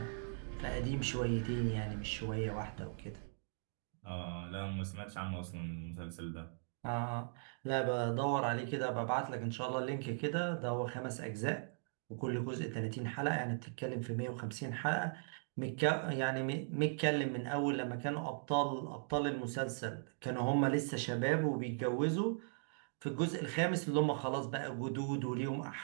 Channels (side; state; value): left; silent; digital silence